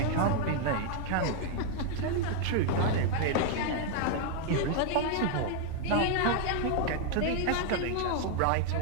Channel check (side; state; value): both; different; correlation 0.00